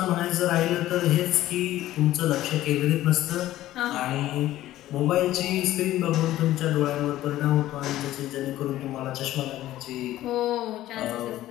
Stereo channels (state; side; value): quieter; right; 14.5 dB